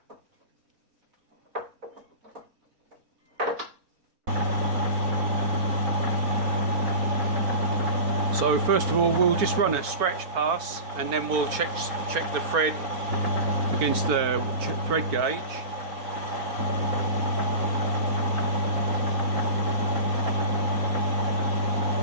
So first of all, we'll just run a scratch pass, and then we'll check the thread against the thread gauge.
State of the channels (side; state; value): left; late; 4.3 ms